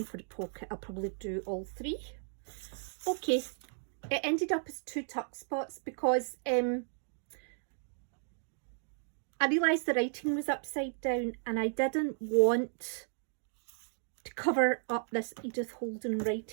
for the pocket, I'll probably do all 3. Okay, it ended up as 2 tuck spots because I realised the writing was upside down and I didn't want to cover up this Edith Holden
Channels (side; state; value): left; silent; digital silence